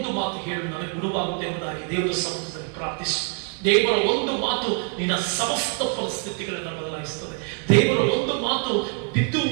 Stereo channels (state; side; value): quieter; left; 37.5 dB